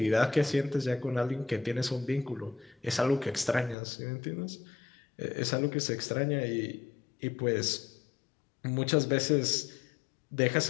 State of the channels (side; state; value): right; drops out; at 3.8 s